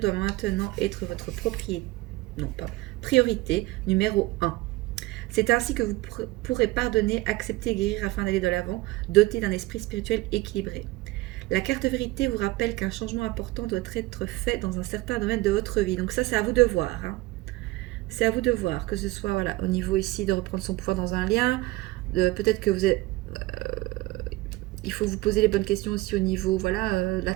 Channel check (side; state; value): left; quieter; 19.8 dB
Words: maintenant être votre priorité numéro 1. C'est ainsi que vous pourrez pardonner, accepter et guérir afin d'aller de l'avant, doté d'un esprit spirituel équilibré. La carte vérité vous rappelle qu'un changement important doit être fait dans un certain domaine de votre vie. Donc ça, c'est à vous de voir, hein. C'est à vous de voir, que ce soit voilà, au niveau ici de reprendre son pouvoir dans un lien, peut-être que vous êtes... il faut vous poser les bonnes questions aussi au niveau, voilà, la